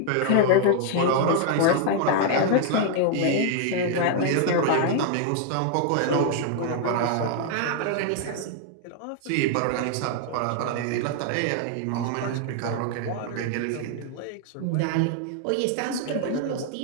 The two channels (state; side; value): different; both; correlation 0.00